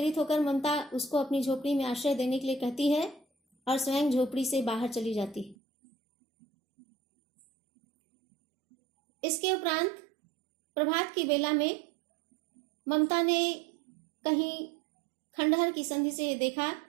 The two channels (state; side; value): drops out; left; at 5.6 s